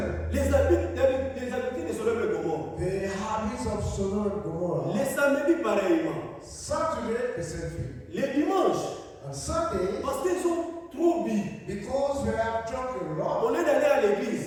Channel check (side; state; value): both; identical; correlation 1.00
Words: Les habitudes de Sodome et Gomorrhe. the habits of Sodom and Gomorrah. Les samedis pareillement. Saturday, the same thing. Les dimanches, On Sunday, parce qu'ils ont trop bu. because they have drunk a lot, Au lieu d'aller à